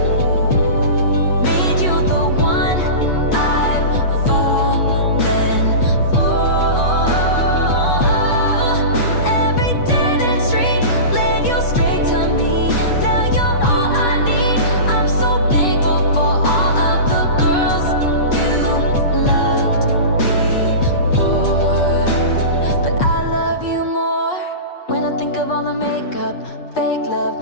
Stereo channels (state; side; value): late; right; 8.3 ms